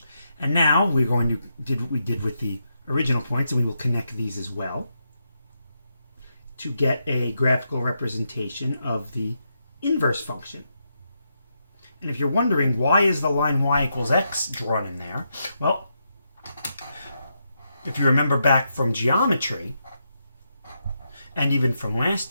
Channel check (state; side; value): inverted; both; correlation -0.82